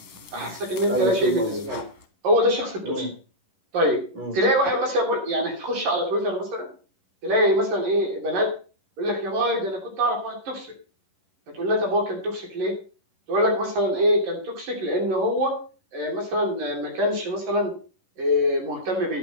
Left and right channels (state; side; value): late; left; 11 ms